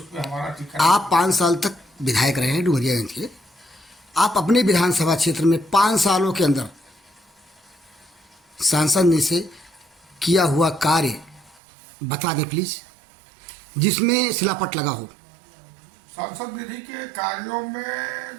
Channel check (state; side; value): drops out; left; at 11.6 s